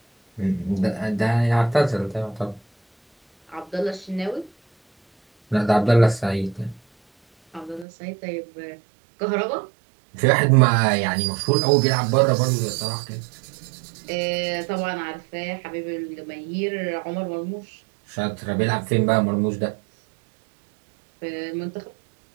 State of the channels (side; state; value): left; drops out; at 7.9 s